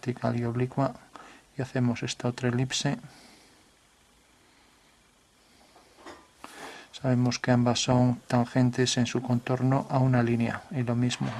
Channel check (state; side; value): identical; both; correlation 1.00